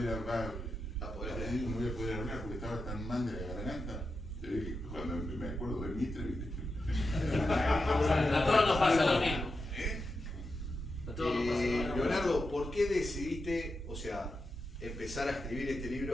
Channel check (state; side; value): normal; both; correlation 0.88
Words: hablar, no voy a poder hablar porque estaba tan mal de la garganta. Se ve que cuando me acuerdo de Mitre, a todos nos pasa lo mismo. A todos nos pasa lo mismo. Leonardo, ¿por qué decidiste, o sea, empezar a escribir este libro,